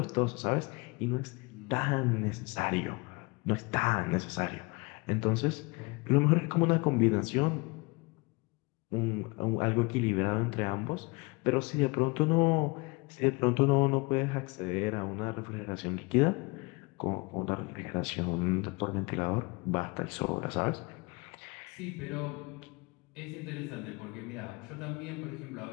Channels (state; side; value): quieter; right; 27.0 dB